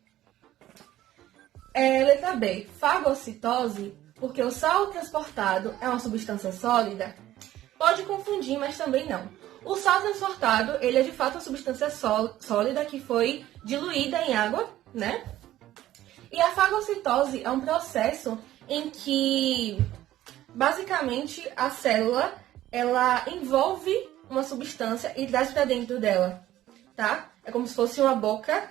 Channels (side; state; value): left; quieter; 14.0 dB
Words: Letra B, fagocitose, porque o sal transportado é uma substância sólida. Pode confundir, mas também não. O sal transportado, ele é de fato uma substância sólida que foi diluída em água, né? E a fagocitose é um processo em que, basicamente, a célula, ela envolve uma substância e traz para dentro dela, tá? É como se fosse uma